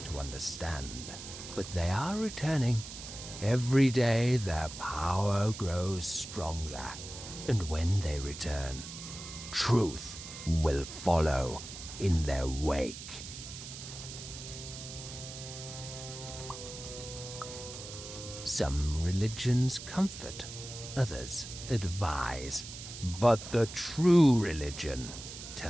to understand. But they are returning. Every day their power grows stronger, and when they return, truth will follow in their wake. Some religions comfort, others advise, but the true religion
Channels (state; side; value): noise; right; hiss, 11 dB below the sound